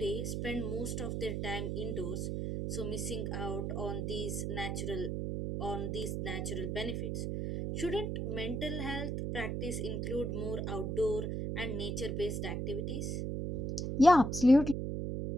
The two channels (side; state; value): right; noise; hum, 2 dB below the sound